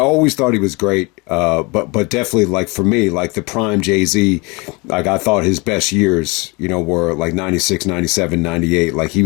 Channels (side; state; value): right; quieter; 27.6 dB